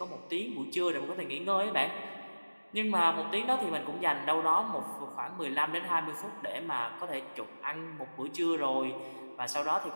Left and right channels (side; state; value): both; inverted; correlation -1.00